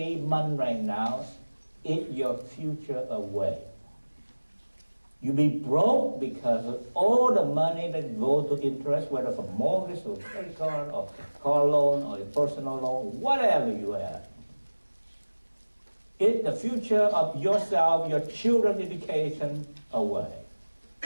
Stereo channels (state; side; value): inverted; both; correlation -1.00